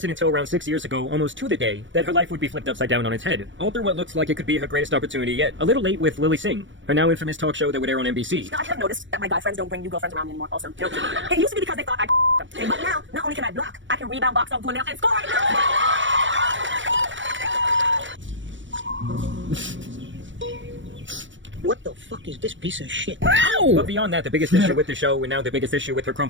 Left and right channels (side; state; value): left; late; 0.55 ms